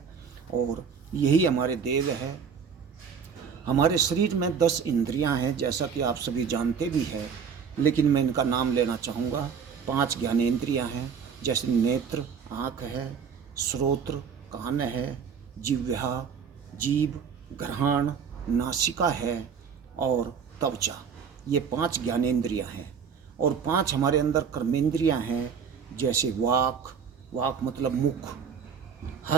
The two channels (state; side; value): quieter; left; 6.6 dB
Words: और यही हमारे देव है। हमारे शरीर में 10 इंद्रियां हैं, जैसा कि आप सभी जानते भी हैं, लेकिन मैं इनका नाम लेना चाहूँगा। 5 ज्ञानेंद्रियां हैं, जैसे नेत्र आँख है, श्रोत्र कान है, जिह्वा जीभ, घ्राण नासिका है और त्वचा। ये 5 ज्ञानेंद्रियां हैं। और 5 हमारे अंदर कर्मेंद्रियां हैं, जैसे वाक मतलब मुख,